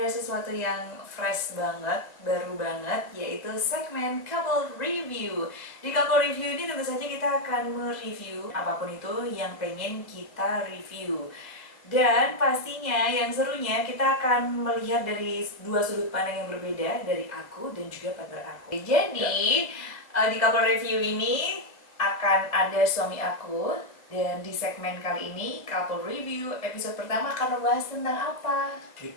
sesuatu yang fresh banget, baru banget, yaitu segmen Couple Review. Di Couple Review ini tentu saja kita akan mereview apapun itu yang pengen kita review. Dan pastinya yang serunya kita akan melihat dari dua sudut pandang yang berbeda dari aku dan juga partner aku. Jadi di Couple Review ini akan ada suami aku, dan di segmen kali ini Couple Review episode pertama akan membahas tentang apa?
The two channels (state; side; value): late; right; 2.1 ms